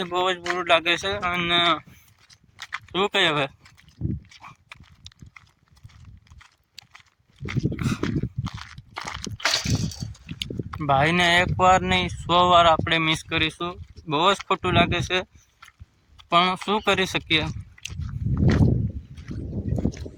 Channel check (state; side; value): identical; both; correlation 1.00